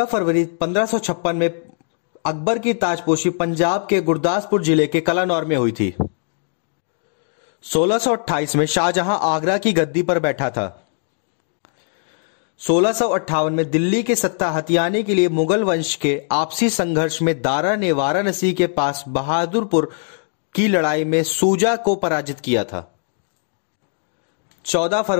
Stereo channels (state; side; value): silent; right; digital silence